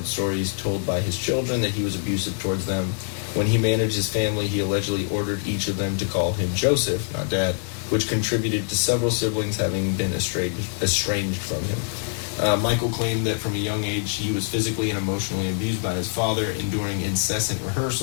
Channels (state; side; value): silent; right; 62 dB below the other